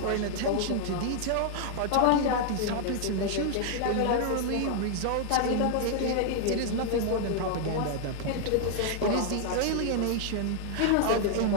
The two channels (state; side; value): different; both; correlation 0.00